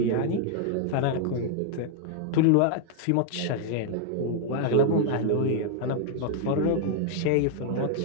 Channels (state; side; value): different; both; correlation 0.00